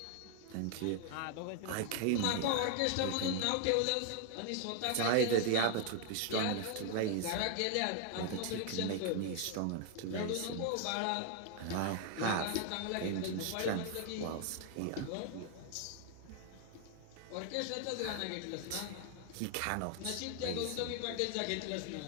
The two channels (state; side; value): different; both; correlation 0.00